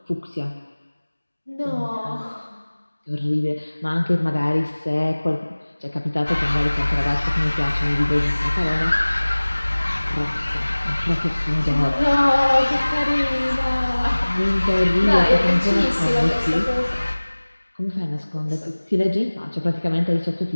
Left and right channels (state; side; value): inverted; both; correlation -1.00